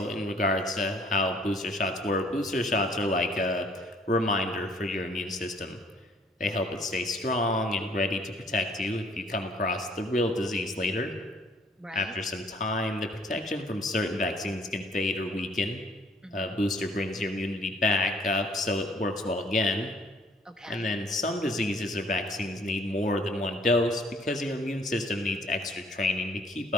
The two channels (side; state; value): both; normal; correlation 0.60